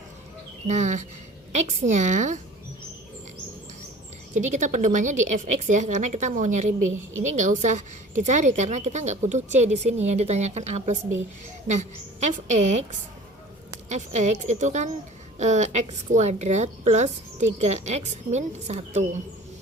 Nah, X nya, jadi kita pedomannya di fx ya, karena kita mau nyari B. Ini nggak usah dicari karena kita nggak butuh C di sini yang ditanyakan A plus B. Nah, fx itu kan x kuadrat plus 3x min 1.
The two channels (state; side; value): normal; both; correlation 0.44